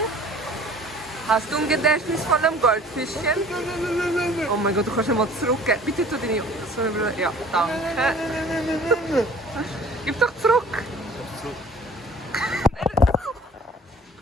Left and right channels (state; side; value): normal; both; correlation 0.49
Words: Hast du ein Gedächtnis von einem Goldfischchen? Oh mein Gott, du kannst mal zurückgeben. Bitte tu deine Sonnenbrille. Ja, danke. Gib doch zurück.